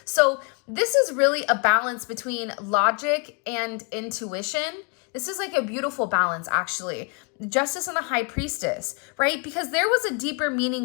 So this is really a balance between logic and intuition. This is like a beautiful balance, actually. Justice and the High Priestess, right? Because there was a deeper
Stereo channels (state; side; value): quieter; right; 34.4 dB